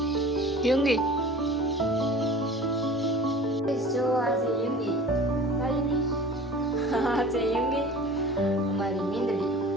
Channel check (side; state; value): both; normal; correlation 0.40